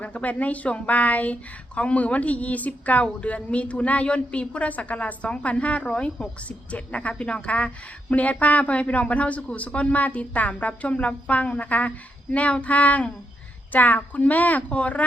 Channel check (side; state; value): both; normal; correlation 0.81